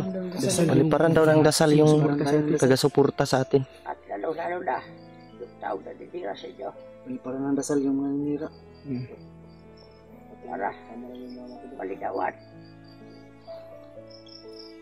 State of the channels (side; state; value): both; identical; correlation 1.00